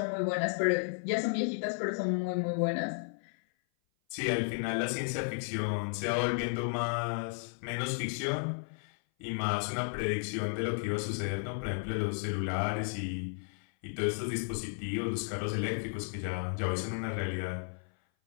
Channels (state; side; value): silent; right; 55 dB below the other